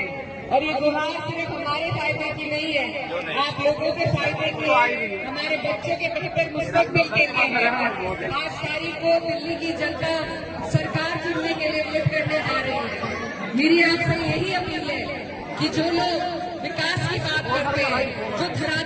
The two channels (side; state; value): both; identical; correlation 1.00